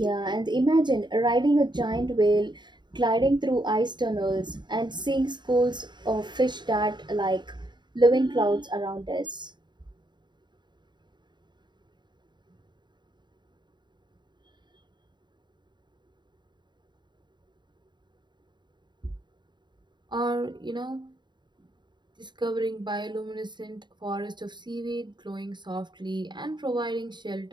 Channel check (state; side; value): late; left; 0.22 ms